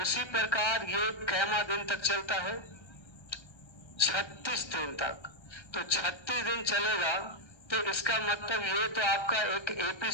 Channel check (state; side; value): late; right; 1.3 ms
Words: प्रकार ये कैमा दिन तक चलता है, 36 दिन तक। तो 36 दिन चलेगा, तो इसका मतलब ये तो आपका एक एपी